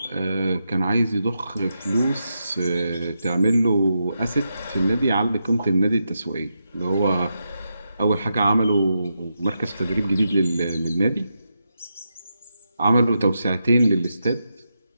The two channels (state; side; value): inverted; both; correlation -0.85